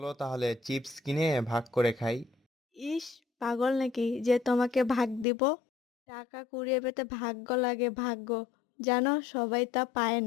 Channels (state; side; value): drops out; right; at 5.2 s